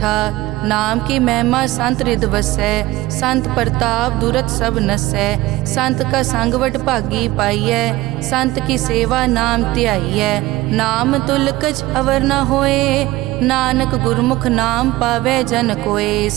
नाम की महिमा संत रिद वसै, संत प्रताप दुरत सब नसै। संत का संग वड भागी पाइयै, संत की सेवा नाम ध्याइयै। नाम तुल कछ अवर न होए, नानक गुरमुख नाम पावै जन कोए।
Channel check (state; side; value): quieter; left; 18.2 dB